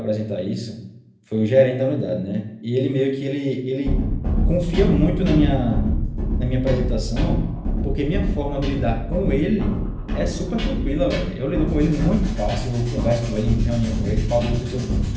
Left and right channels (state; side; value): identical; both; correlation 1.00